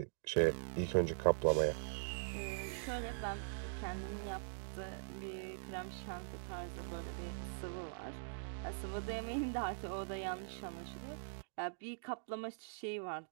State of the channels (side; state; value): left; silent; digital silence